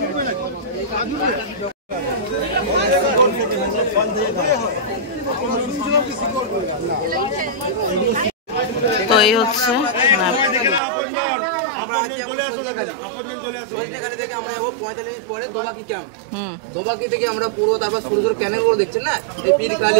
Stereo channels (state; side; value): drops out; left; at 10.8 s